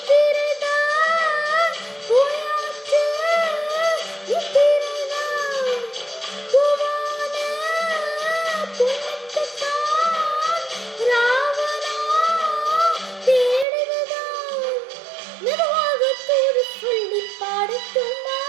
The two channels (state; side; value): drops out; left; at 13.7 s